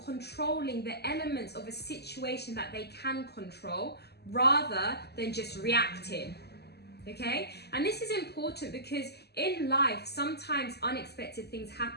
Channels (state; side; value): late; right; 0.47 ms